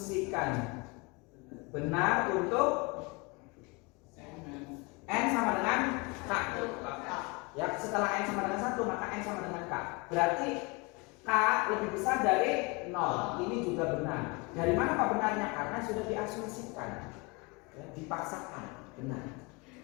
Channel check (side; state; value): right; quieter; 27.7 dB